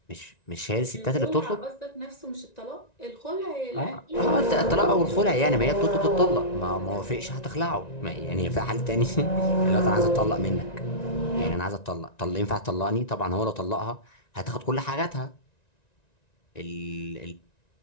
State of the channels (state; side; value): late; right; 1.9 ms